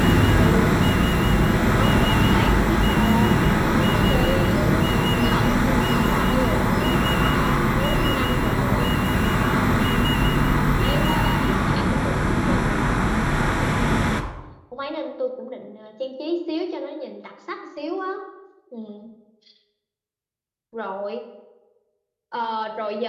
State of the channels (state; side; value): identical; both; correlation 1.00